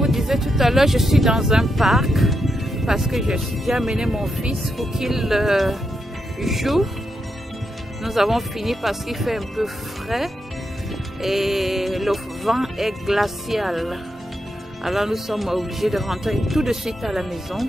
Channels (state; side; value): normal; both; correlation 0.84